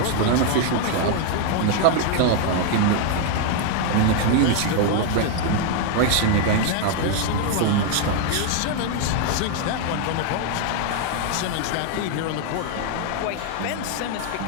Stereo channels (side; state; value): both; different; correlation 0.00